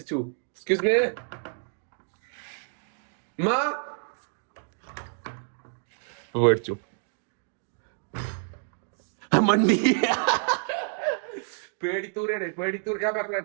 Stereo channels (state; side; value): silent; left; 59 dB below the other